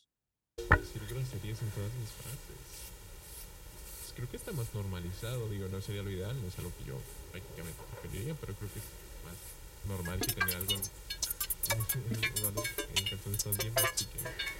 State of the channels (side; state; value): both; identical; correlation 1.00